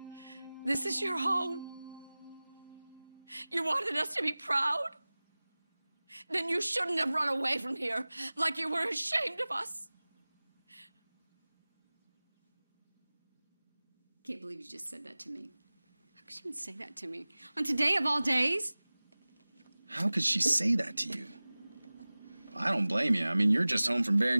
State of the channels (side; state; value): both; inverted; correlation -0.99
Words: This is your home. You wanted us to be proud? Then you shouldn't have run away from here like you were ashamed of us. Can't believe you just said that to me. How could you even say that to me? On today of all days? How could she say that to you? I don't blame you. I mean, you're just home from